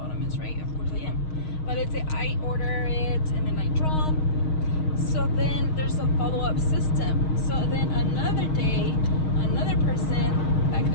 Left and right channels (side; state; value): right; late; 6.4 ms